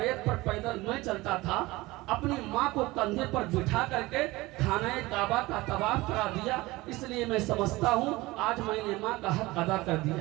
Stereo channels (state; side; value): quieter; left; 20.4 dB